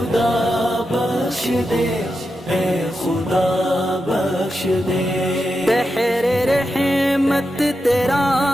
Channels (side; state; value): both; normal; correlation 0.88